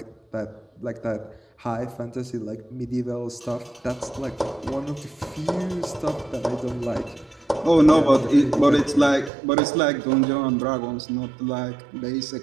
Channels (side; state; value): left; drops out; at 9.3 s